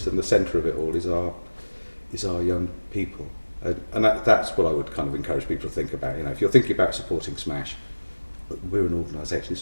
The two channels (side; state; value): both; inverted; correlation -1.00